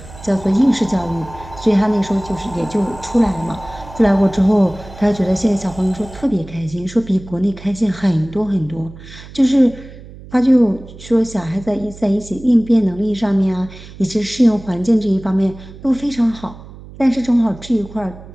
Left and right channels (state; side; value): noise; right; hum, 17 dB below the sound